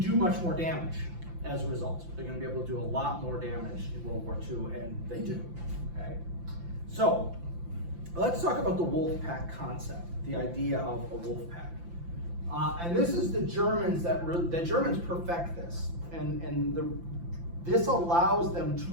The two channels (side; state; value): left; late; 5.8 ms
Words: much more damage as a result. They're going to be able to do a lot more damage in World War II, and they do, okay? So, let's talk about the wolf pack concept, the idea of a wolf pack. And this is the Germans the Germans perfect this, and this allows them to